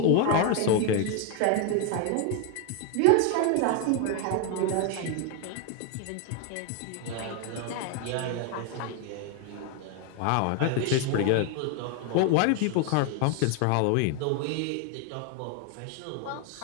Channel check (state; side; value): different; both; correlation 0.01